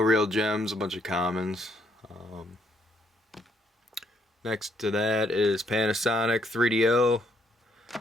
gems, a bunch of commons. Next to that is Panasonic 3DO.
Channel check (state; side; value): normal; both; correlation 0.71